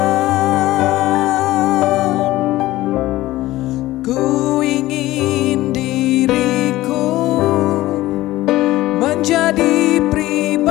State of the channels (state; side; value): quieter; right; 16.9 dB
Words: Ku ingin diriku menjadi